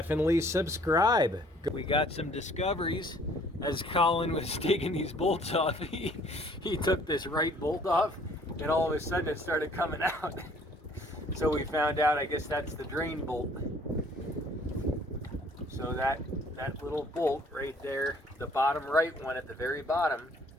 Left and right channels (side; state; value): both; normal; correlation 0.58